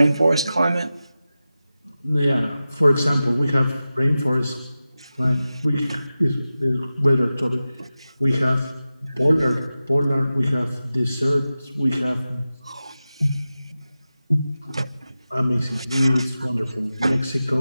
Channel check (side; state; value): both; inverted; correlation -0.94